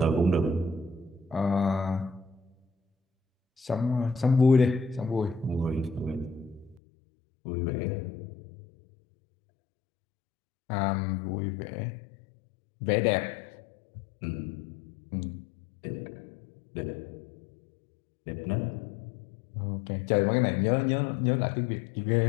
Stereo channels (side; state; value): right; drops out; at 6.8 s